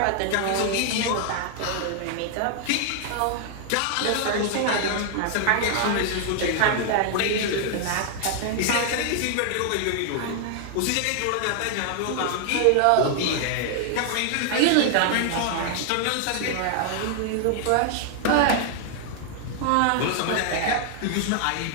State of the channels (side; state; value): both; different; correlation 0.00